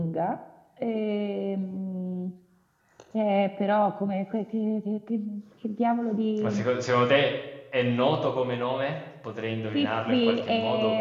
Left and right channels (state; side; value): identical; both; correlation 1.00